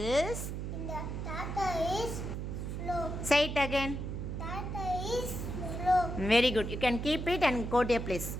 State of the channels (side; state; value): right; noise; hum, 4 dB below the sound